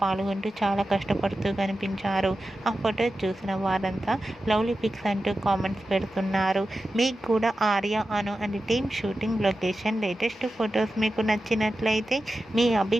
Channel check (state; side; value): normal; both; correlation 0.92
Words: పాల్గొంటూ చాలా కష్టపడుతూ కనిపించారు. ఆ ఫొటోస్ చూసిన వారంతా లవ్లీ పిక్స్ అంటూ కామెంట్స్ పెడుతున్నారు. మీకు కూడా Arya Anu and team shooting location latest photos మీకు నచ్చినట్లయితే మీ